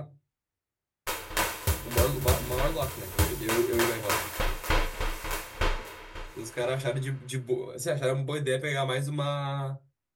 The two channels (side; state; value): both; identical; correlation 1.00